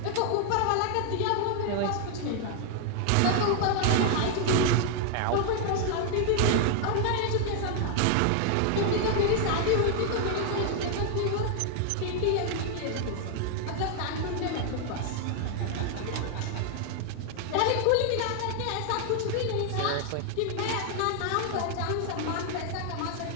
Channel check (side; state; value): both; different; correlation 0.00